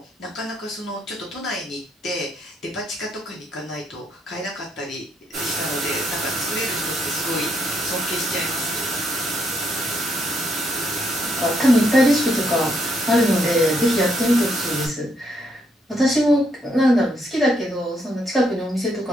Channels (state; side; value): normal; both; correlation 0.75